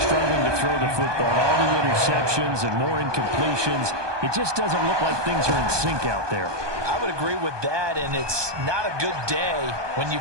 to throw the football. All the interceptions and more incompletions. It just doesn't look like things are in sync out there. I would agree with that, and it's not a good day when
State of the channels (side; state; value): left; late; 1.2 ms